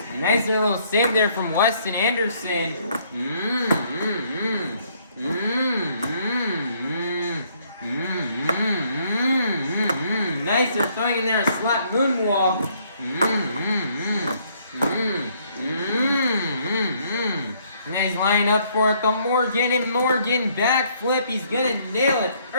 Nice little save there from Weston Anderson. Nice, they're throwing in there a slap moonwalk. And he's lining up for it, the Morgan, and Morgan backflip. He's gonna nail it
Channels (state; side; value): inverted; both; correlation -0.67